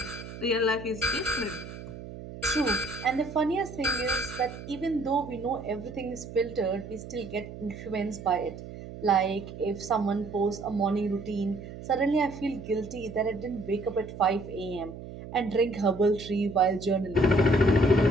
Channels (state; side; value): noise; right; hum, 12 dB below the sound